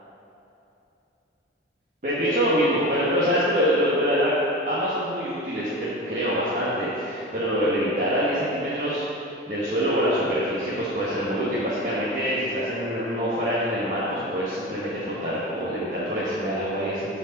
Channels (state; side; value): normal; both; correlation 0.29